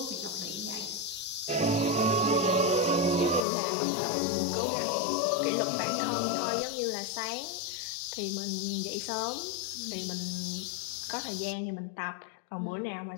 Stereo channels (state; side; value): drops out; right; at 3.5 s